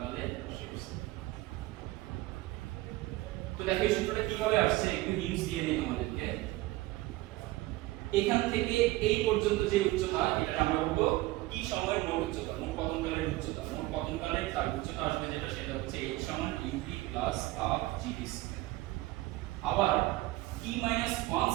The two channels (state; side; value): quieter; left; 18.9 dB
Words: শেষ সেকেন্ড। তো দেখো এই সূত্রটা কিভাবে আসছে, একটু হিন্টস দিয়ে দিই তোমাদেরকে। এখান থেকে এই পর্যন্ত যে উচ্চতা, এটা আমরা বলবো কি সময়ের মোট উচ্চতা, মোট পতনকালের উচ্চতা। মোট পতনকালের তার উচ্চতা আসবে যেটা, সেটা হচ্ছে h সমান ut plus half gd square. আবার t - 1